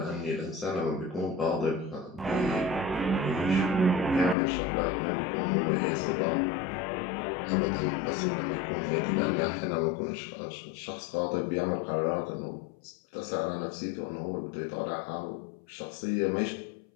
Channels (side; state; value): right; drops out; at 4.4 s